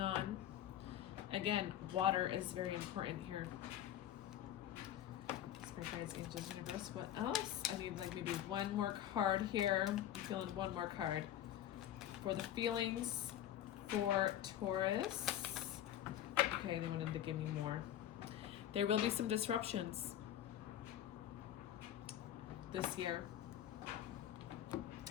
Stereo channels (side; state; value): right; quieter; 11.6 dB